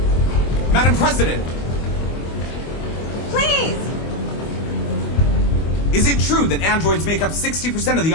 Madam President! Please! Is it true that androids make up 60% of the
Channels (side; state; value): right; late; 25 ms